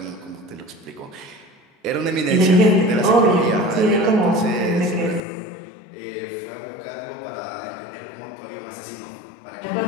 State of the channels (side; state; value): right; drops out; at 5.2 s